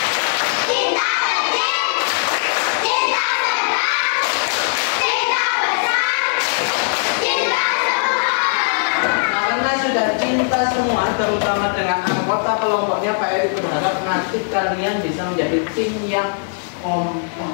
Cinta kecil, cinta sedang, cinta besar, cinta semua. Karena sudah cinta semua, terutama dengan anggota kelompoknya, Pak Eri berharap nanti kalian bisa menjadi tim yang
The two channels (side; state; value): right; silent; digital silence